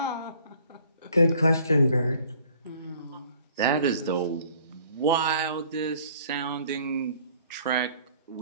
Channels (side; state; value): both; inverted; correlation -0.56